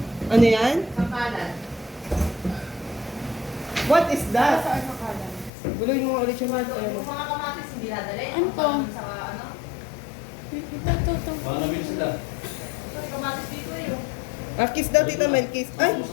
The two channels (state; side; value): drops out; right; at 5.5 s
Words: Ano yan? What is that? Guluhin mo ulit yung mga Mga kamatis hindi nadali. Ano to? Sa ano? Ito. Baka nabili sila. Kasi kamatis dito eh. kiss daw, Tita Mel, kiss. Ay!